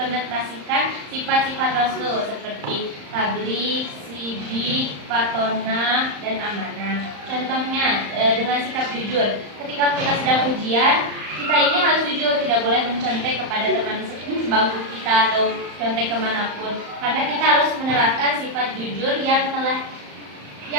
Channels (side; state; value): left; late; 35 ms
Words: sifat-sifat Rasul seperti tabligh, sidik, patona, dan amanah. Contohnya dengan sikap jujur. Ketika kita sedang ujian, kita ini harus jujur, tidak boleh mencontek kepada teman sebangku kita atau contek kemanapun. Karena kita harus menerapkan sifat jujur yang